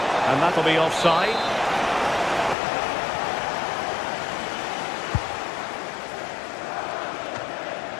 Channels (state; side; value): drops out; right; at 2.6 s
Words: And that'll be offside.